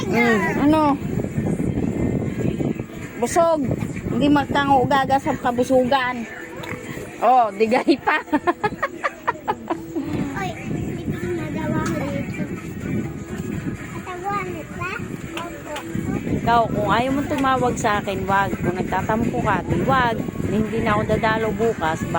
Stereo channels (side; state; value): both; identical; correlation 1.00